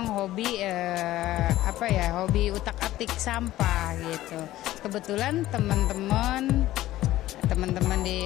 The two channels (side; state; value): right; quieter; 15.2 dB